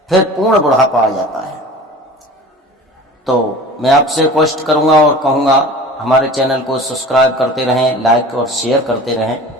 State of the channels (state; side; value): normal; both; correlation 0.39